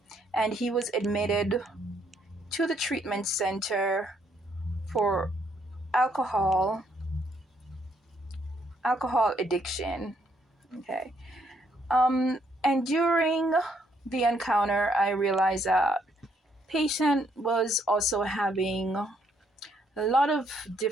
and he was admitted to the treatment center for alcohol addiction. Okay. And during the encounter, I realized that patient was also having a lot of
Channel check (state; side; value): normal; both; correlation 0.71